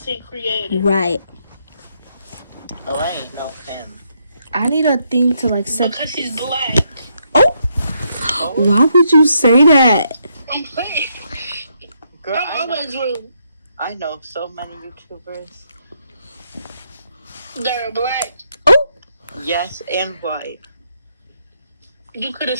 creator. Right. Oh, I ain't know him. I need a thing to like set. Because he's black. Oh, why would you say that? I'm playing. Girl, I'm always rude. I know so many YouTubers. They're black. Oh, Yes, and white. You could have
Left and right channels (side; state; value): both; inverted; correlation -0.77